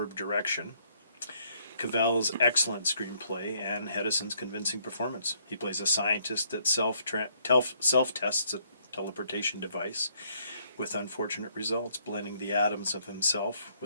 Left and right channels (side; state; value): both; inverted; correlation -0.69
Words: direction, Cavell's excellent screenplay, and Hedison's convincing performance. He plays a scientist that self-tests a teleportation device with unfortunate results, blending the atoms of himself